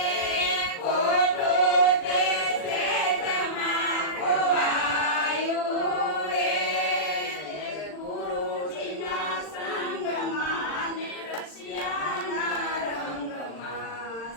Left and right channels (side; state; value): right; late; 40 ms